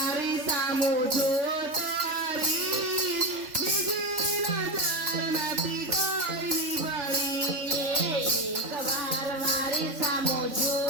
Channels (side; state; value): left; late; 3.8 ms